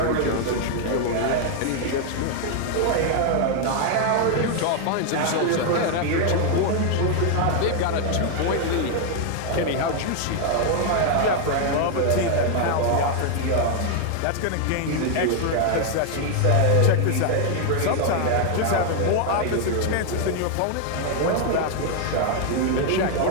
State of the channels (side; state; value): both; different; correlation 0.00